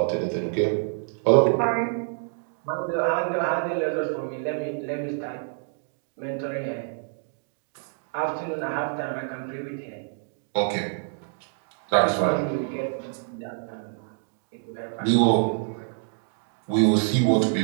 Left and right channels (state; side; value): silent; left; 60 dB below the other